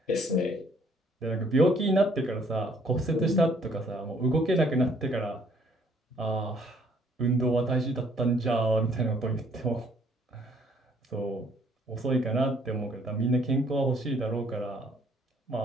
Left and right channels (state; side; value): normal; both; correlation 0.63